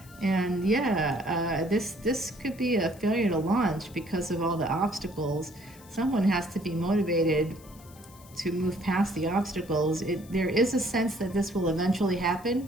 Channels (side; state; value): left; noise; hiss, 23 dB below the sound